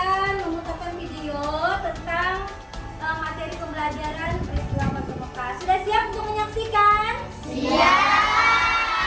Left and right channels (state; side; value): identical; both; correlation 1.00